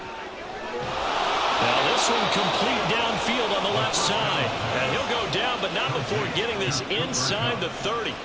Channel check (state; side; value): identical; both; correlation 1.00